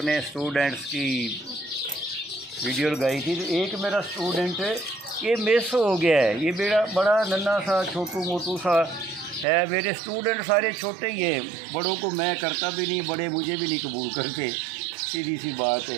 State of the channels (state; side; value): drops out; left; at 9.5 s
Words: स्टूडेंट्स की वीडियो लगाई थी, तो एक मेरा स्टूडेंट ये मिस हो गया है। ये बड़ा नन्हा सा छोटू मोटू सा है। मेरे स्टूडेंट सारे छोटे ही हैं, बड़ों को मैं करता भी नहीं, बड़े मुझे भी नहीं कबूल करते, सीधी सी बात